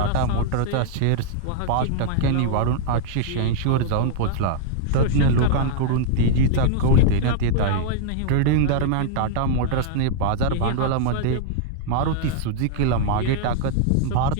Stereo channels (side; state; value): both; different; correlation -0.01